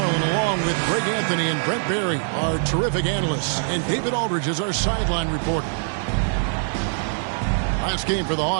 along with Greg Anthony and Brent Barry, our terrific analysts, and David Aldridge is our sideline reporter. Last game for the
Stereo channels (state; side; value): silent; left; 60 dB below the other